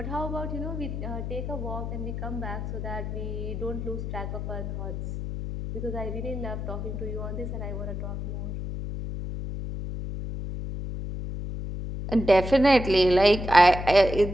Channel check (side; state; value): left; noise; hum, 5 dB below the sound